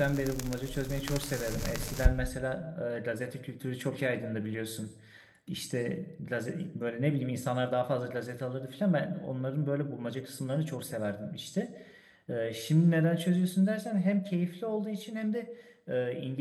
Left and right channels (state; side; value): identical; both; correlation 1.00